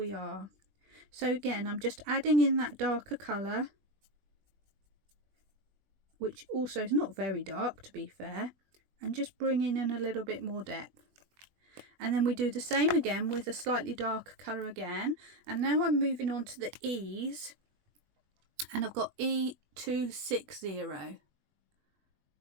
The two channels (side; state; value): left; late; 20 ms